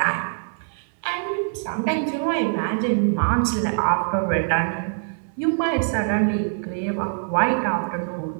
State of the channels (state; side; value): silent; left; digital silence